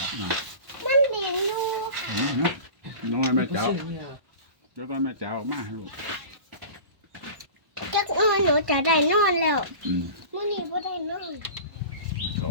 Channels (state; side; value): late; left; 1.1 ms